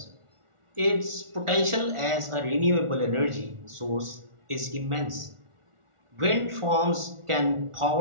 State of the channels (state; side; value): late; left; 1.4 ms